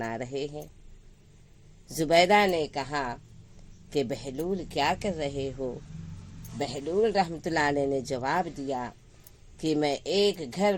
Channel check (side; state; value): both; identical; correlation 1.00